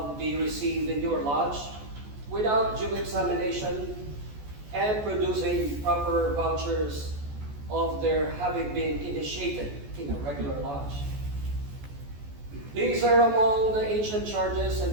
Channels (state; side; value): late; left; 14 ms